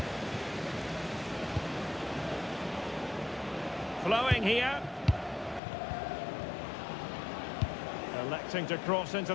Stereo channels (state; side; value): drops out; right; at 5.6 s